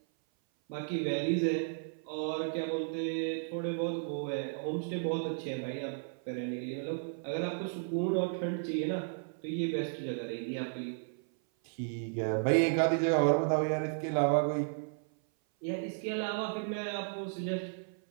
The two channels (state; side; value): silent; left; 55 dB below the other